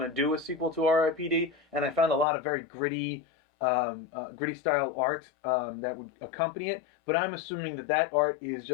to do a sequel to R.I.P.D, and I found a lot of very gritty style art that would accompany it, but I'm assuming that art is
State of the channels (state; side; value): drops out; right; at 2.2 s